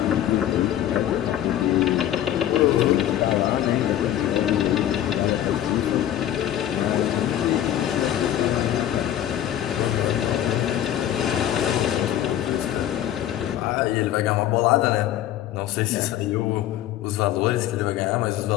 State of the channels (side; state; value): right; quieter; 11.8 dB